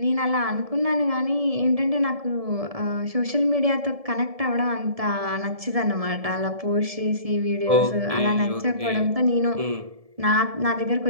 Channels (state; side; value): late; left; 1.7 ms